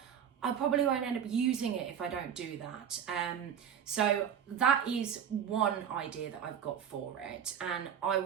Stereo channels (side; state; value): left; quieter; 8.5 dB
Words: I probably won't end up using it if I don't do that. So that is one idea that I've got for it. And I